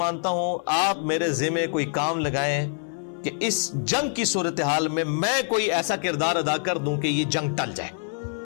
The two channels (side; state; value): right; silent; 58 dB below the other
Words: مانتا ہوں، آپ میرے ذمہ کوئی کام لگائیں کہ اس جنگ کی صورتحال میں کوئی ایسا کردار ادا کر دوں کہ یہ جنگ ٹل جائے.